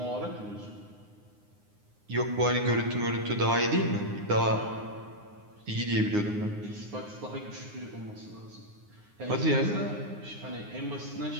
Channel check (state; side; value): late; left; 9.7 ms